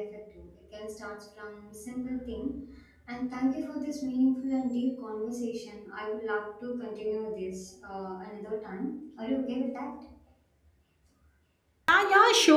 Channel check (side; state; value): both; identical; correlation 1.00